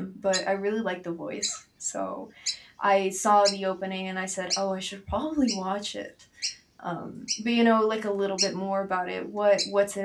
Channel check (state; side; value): identical; both; correlation 1.00